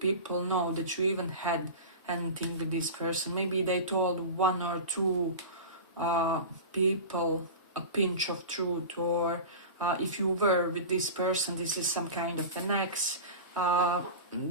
know that you even had anything with this person. Maybe they told one or two people a pinch of truth, or if you were with this person, this is some kind of an ex,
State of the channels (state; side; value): inverted; both; correlation -0.30